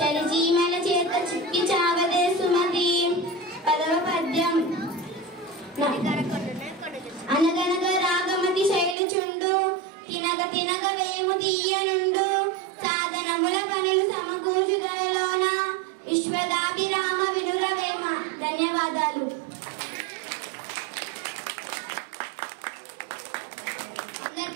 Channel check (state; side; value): drops out; left; at 9.0 s